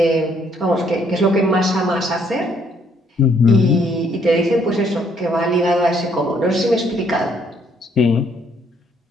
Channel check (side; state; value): both; normal; correlation 0.67